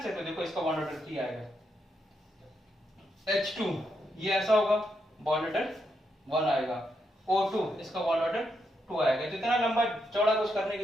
तो देखो इसका बॉन्ड ऑर्डर 3 आएगा। H2 ये ऐसा होगा, बॉन्ड ऑर्डर 1 आएगा। O2 इसका बॉन्ड ऑर्डर 2 आएगा। तो इतना लंबा चौड़ा कुछ करने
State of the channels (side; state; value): both; normal; correlation 0.81